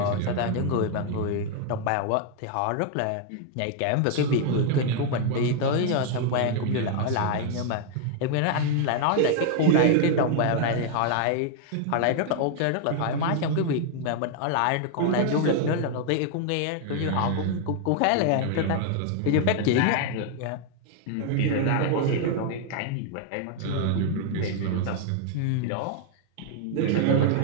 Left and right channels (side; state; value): both; different; correlation 0.00